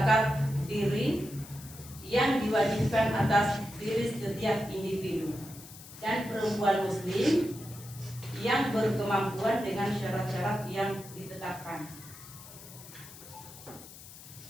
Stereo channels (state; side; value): noise; left; hiss, 17 dB below the sound